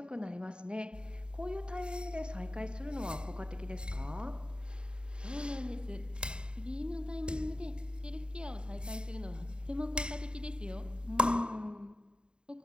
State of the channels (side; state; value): left; late; 0.050 ms